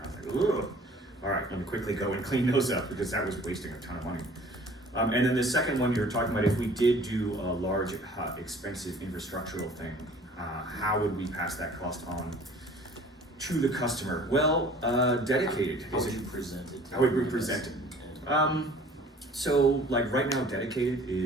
I was like, ugh, all right, let me quickly go and clean those up because that was wasting a ton of money. And then the second one you were talking about, if we did do a large, expensive infrastructural thing, how would we pass that cost on to the customer? Well, dedicated. How would you present it? How would we present it? So like right now, dedicated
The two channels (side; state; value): both; normal; correlation 0.50